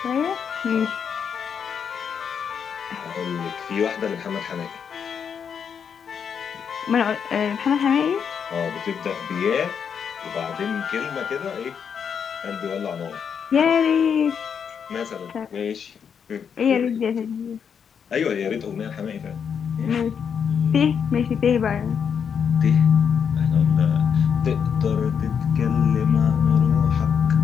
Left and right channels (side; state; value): right; quieter; 7.2 dB